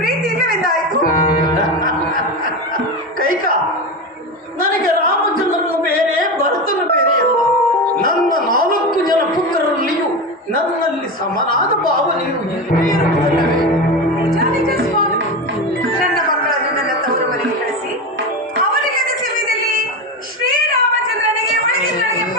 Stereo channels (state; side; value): normal; both; correlation 0.20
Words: ಇಲ್ಲವೆಂದಾಯಿತು. ಕೈಕ, ನನಗೆ ರಾಮಚಂದ್ರನು ಬೇರೆ, ಭರತನು ಬೇರೆ ಅಲ್ಲ. ನನ್ನ 4 ಜನ ಪುತ್ರರಲ್ಲಿಯೂ ನನ್ನಲ್ಲಿ ಸಮನಾದ ಭಾವನೆಯು ಇರುವುದಲ್ಲವೇ? ನಿಜ ನಿಜ ಸ್ವಾಮಿ. ನನ್ನ ಮಕ್ಕಳನ್ನು ನನ್ನ ತವರು ಮನೆಗೆ ಕಳಿಸಿ ಅವರಿಗೆ ಸಮಯದಲ್ಲಿ ಶ್ರೀರಾಮಚಂದ್ರನಿಗೆ ಒಳಗಿನೊಳಗೆ